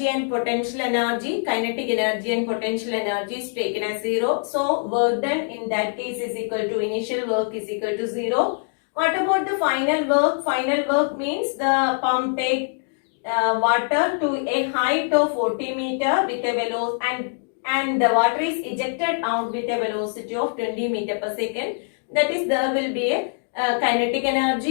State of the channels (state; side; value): silent; right; digital silence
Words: and potential energy? Kinetic energy and potential energy is taken as 0. So, work done in that case is equal to initial work is equal to 0. What about the final work? Final work means the pump take water to a height of 40 meter with a velocity and the water is ejected out with a velocity of 20 meter per second. That is, there will be a kinetic